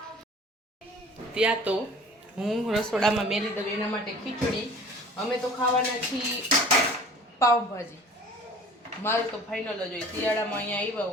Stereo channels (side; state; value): both; normal; correlation 0.46